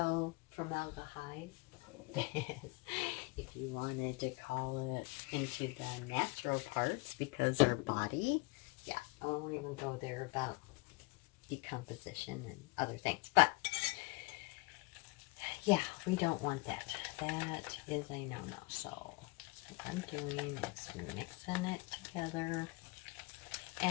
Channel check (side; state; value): right; quieter; 25.7 dB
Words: formaldehyde is, if you wanted to call it into the natural parts, because our body, yeah, I won't even go there about decomposition and other things, but yeah, we don't want that. That is a no-no. So what I'm doing is mixing it together,